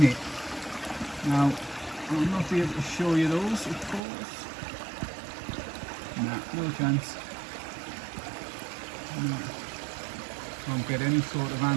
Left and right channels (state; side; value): drops out; left; at 4.0 s